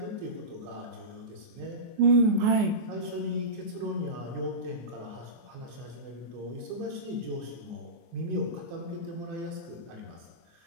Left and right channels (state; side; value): late; left; 24 ms